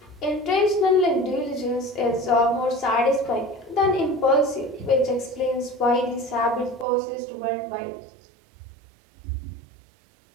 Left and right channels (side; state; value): left; drops out; at 6.9 s